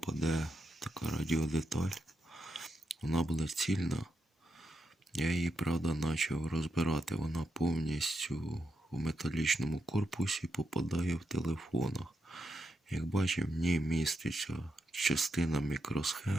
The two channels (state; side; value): normal; both; correlation 0.84